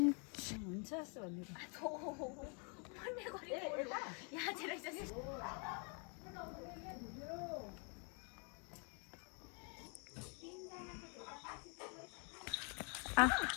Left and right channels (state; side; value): quieter; right; 37.5 dB